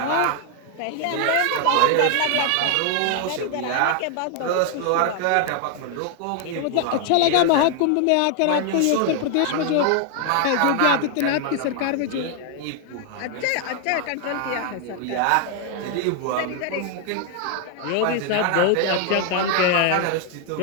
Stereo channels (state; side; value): different; both; correlation 0.00